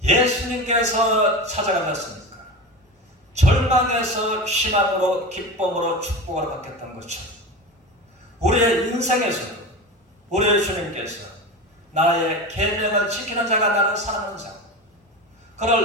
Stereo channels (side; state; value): both; normal; correlation 0.27